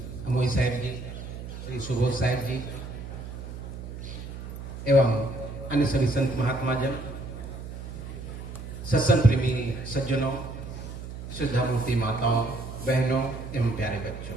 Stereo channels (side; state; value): right; noise; hum, 10 dB below the sound